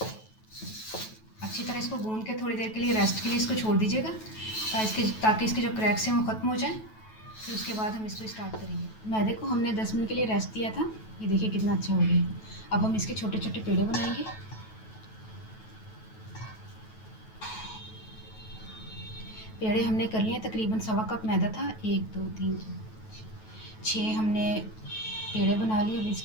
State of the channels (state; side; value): late; right; 9.2 ms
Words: अच्छी तरह इसको गूंद के थोड़ी देर के लिए रेस्ट के लिए इसको छोड़ दीजिएगा ताकि इसके जो क्रैक्स हैं वो ख़त्म हो जाएं। फिर उसके बाद हम इसको स्टार्ट करेंगे। मैदे को हमने 10 मिनट के लिए रेस्ट दिया था। ये देखिए कितना अच्छा हो गया। अब हम इसके छोटे छोटे पेड़े बनाएंगे। पेड़े हमने कर लिए। तकरीबन 1.25 कप मैदा था। 1 2 3 6 हमने पेड़े बना लिए। अब